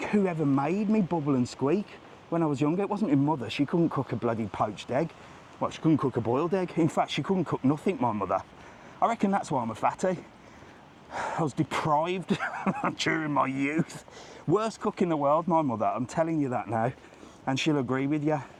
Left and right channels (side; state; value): both; identical; correlation 1.00